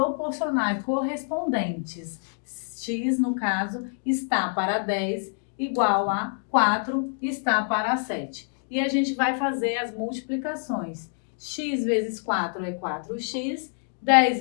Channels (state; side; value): silent; right; 61 dB below the other